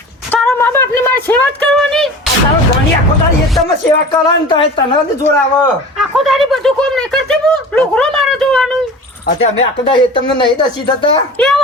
તારા મા બાપ ની મારી સેવા જ કરવાની. તારો ઘણી આખો તારી એકદમ સેવા કરવાની તો તને જોર આવે. આખો દાડી બધું કોમ નહીં કરતી હું લુગરો મારે જોવાનું. અત્યારે અમે આખો તારી તમને નહીં દસી થતા એ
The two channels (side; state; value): both; normal; correlation 0.37